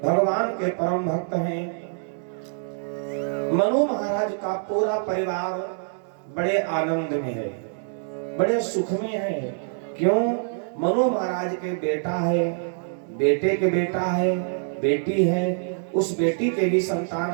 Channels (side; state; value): left; silent; digital silence